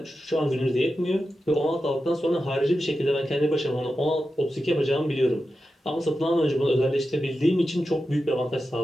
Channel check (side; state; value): both; normal; correlation 0.91